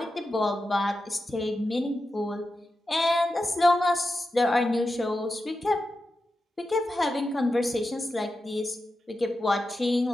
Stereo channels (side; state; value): both; normal; correlation 0.90